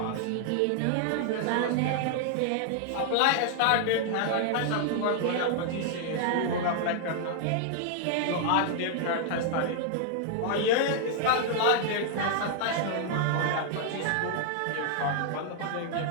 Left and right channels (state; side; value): different; both; correlation 0.00